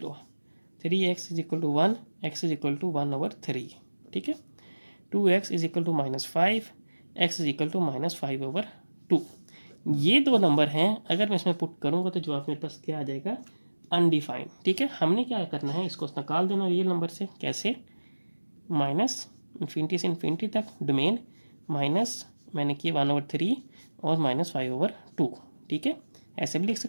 3x = 1, x = 1/3। ठीक है, 2x = -5, x = -5/2। ये दो नंबर हैं, अगर मैं इसमें पुट करूँगा तो जवाब मेरे पास क्या आ जाएगा, अनडिफाइंड। ठीक है, हमने क्या करना है, इसको निकाल देना रियल नंबर से। कैसे, -∞ से इन्फिनिटी तक डोमेन, माइनस मैंने किया 1/3 और -5/2। ठीक है, ऐसे भी लिख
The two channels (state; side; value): inverted; both; correlation -1.00